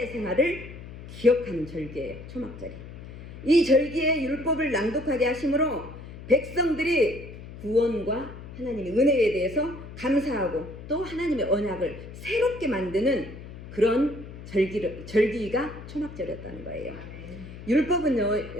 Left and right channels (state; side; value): noise; left; hum, 14 dB below the sound